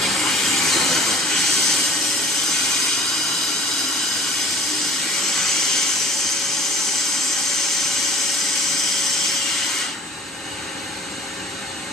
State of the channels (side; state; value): both; normal; correlation 0.47